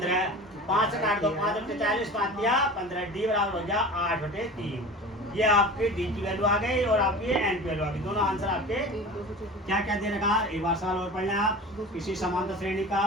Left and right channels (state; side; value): normal; both; correlation 0.36